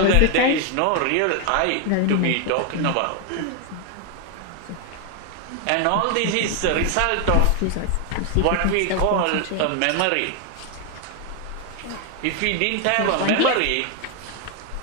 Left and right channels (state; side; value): different; both; correlation 0.01